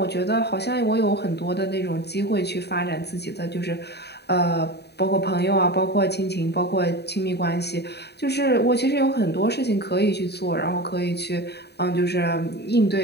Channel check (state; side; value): late; right; 0.48 ms